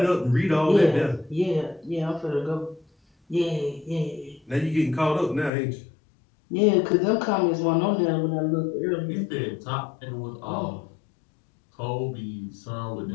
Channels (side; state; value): right; drops out; at 5.5 s